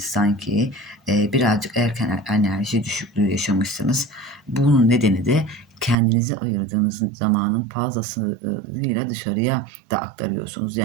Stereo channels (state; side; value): drops out; left; at 6.0 s